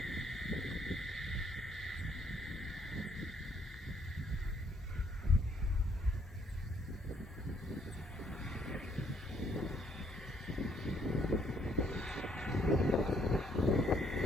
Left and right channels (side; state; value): both; normal; correlation 0.68